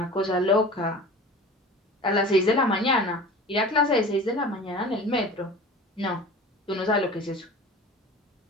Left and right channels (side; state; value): both; normal; correlation 0.39